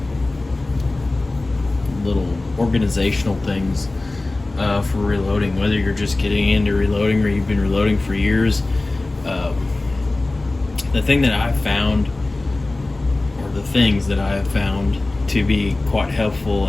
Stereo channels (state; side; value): quieter; right; 3.0 dB